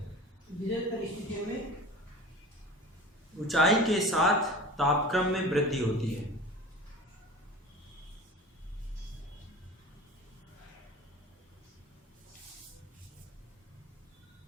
विशेष परिस्थितियों में ऊंचाई के साथ तापक्रम में वृद्धि होती है।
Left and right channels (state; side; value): normal; both; correlation 0.37